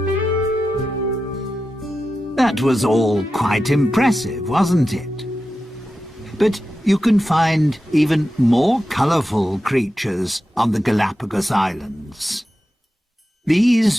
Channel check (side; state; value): both; normal; correlation 0.91